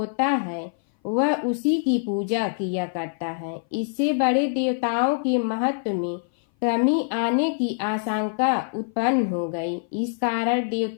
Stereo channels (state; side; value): silent; right; 58 dB below the other